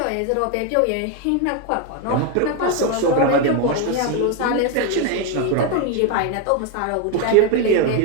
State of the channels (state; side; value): different; both; correlation 0.01